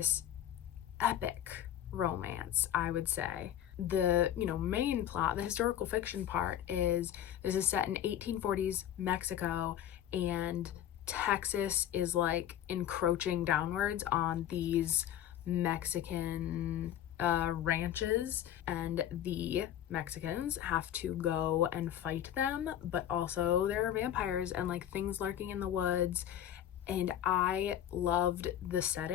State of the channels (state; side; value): quieter; right; 10.9 dB